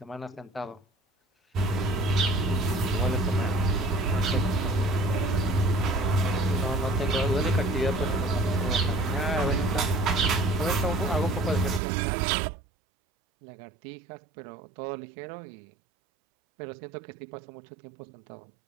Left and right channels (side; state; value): left; drops out; at 11.8 s